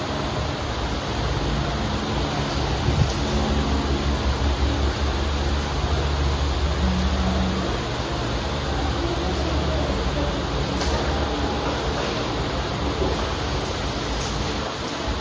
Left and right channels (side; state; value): both; identical; correlation 1.00